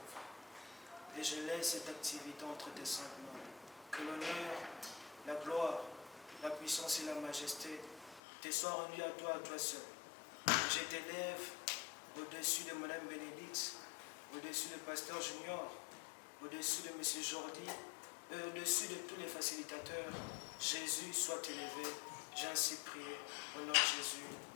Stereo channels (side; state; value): right; drops out; at 8.2 s